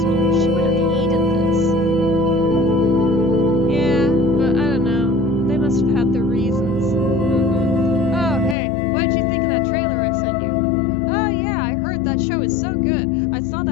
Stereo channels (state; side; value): drops out; right; at 8.6 s